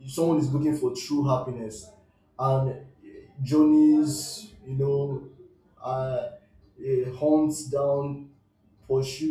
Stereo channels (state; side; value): identical; both; correlation 1.00